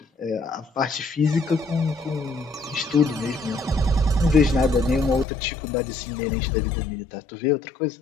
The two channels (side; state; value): right; drops out; at 5.2 s